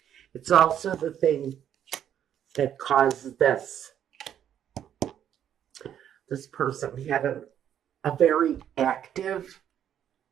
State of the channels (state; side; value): quieter; left; 9.9 dB